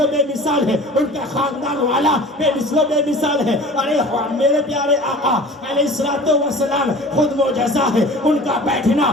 و بے مثال ہے، ان کا خاندان والا بے مثل و بے مثال ہے. ارے میرے پیارے آقا علیہ السلام خود معجزہ ہے، ان کا بیٹھنا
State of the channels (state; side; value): normal; both; correlation 0.42